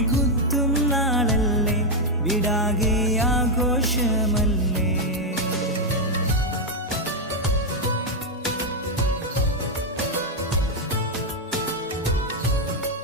കുത്തും നാളല്ലേ വിടാകെ ആഘോഷമല്ലേ.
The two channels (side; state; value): both; normal; correlation 0.02